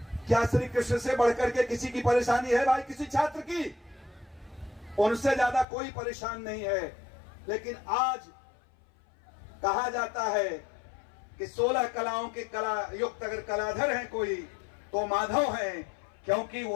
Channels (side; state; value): right; drops out; at 5.7 s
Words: क्या श्री कृष्ण से बढ़कर के किसी की परेशानी है भाई? किसी छात्र की? उनसे ज्यादा कोई परेशान नहीं है। लेकिन आज कहा जाता है कि 16 कलाओं के कला युक्त अगर कलाधर हैं कोई, तो माधव हैं, क्योंकि